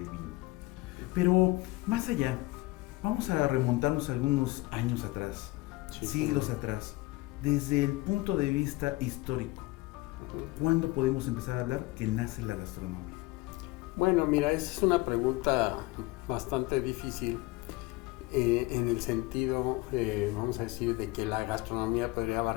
Vino. Pero más allá, Vamos a remontarnos algunos años atrás, Sí. siglos atrás, desde el punto de vista histórico. ¿Cuándo podemos empezar a hablar que nace la gastronomía? Bueno, mira, esa es una pregunta bastante difícil en el sentido, vamos a decir, de que la gastronomía podría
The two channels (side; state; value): right; quieter; 20.8 dB